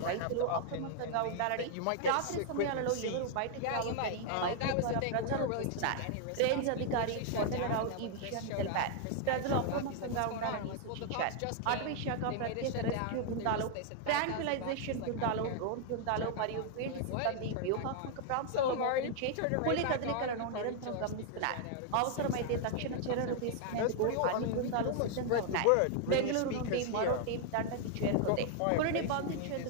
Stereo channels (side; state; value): both; different; correlation 0.00